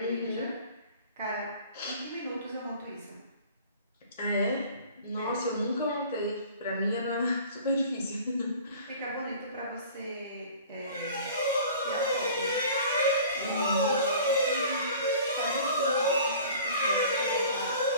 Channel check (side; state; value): both; inverted; correlation -0.46